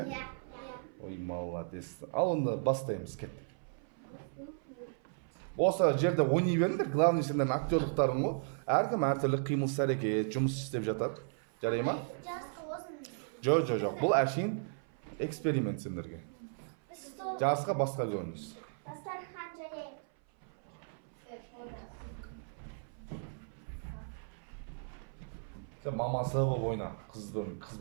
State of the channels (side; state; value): left; silent; 54 dB below the other